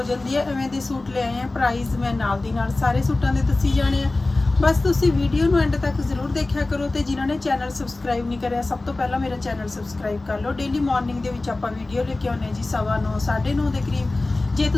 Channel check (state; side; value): quieter; right; 3.1 dB